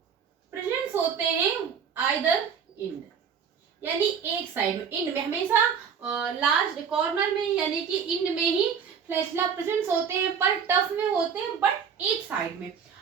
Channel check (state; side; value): quieter; left; 7.0 dB